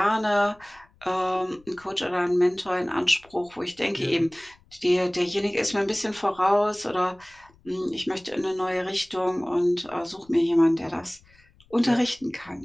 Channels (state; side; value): noise; left; rumble, 29 dB below the sound